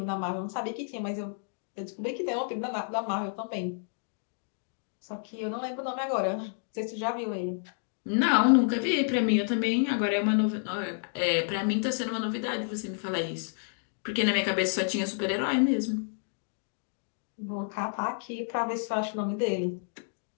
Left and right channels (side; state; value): right; silent; digital silence